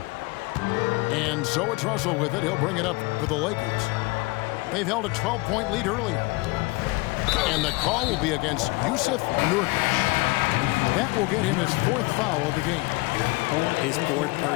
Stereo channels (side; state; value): right; quieter; 24.4 dB